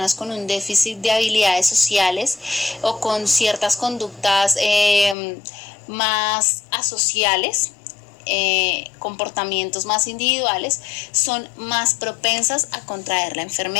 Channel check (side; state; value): right; drops out; at 5.2 s